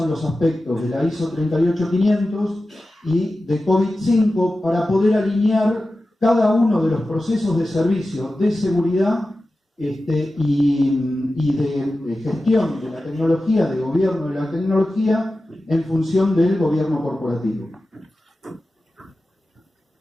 los aspectos de la ISO 38500 y de COVID-5 para poder alinear cada uno de los procesos de servicio de seguridad y de gestión de la tecnología, de gobierno de la tecnología, en función del gobierno corporativo.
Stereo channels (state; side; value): normal; both; correlation 0.94